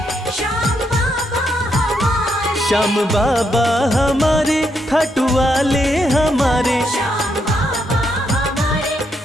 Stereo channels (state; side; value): normal; both; correlation 0.78